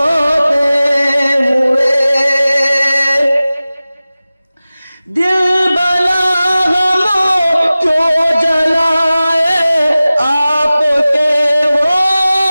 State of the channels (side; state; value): both; inverted; correlation -0.97